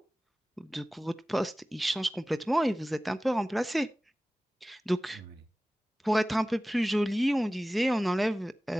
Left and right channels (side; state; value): both; normal; correlation 0.97